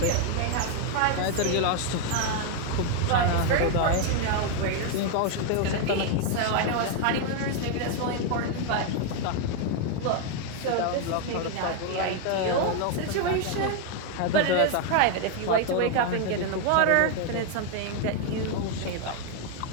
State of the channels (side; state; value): both; different; correlation 0.01